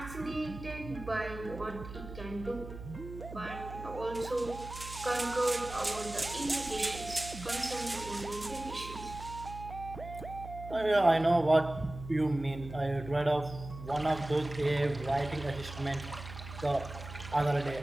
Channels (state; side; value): noise; right; hum, 12 dB below the sound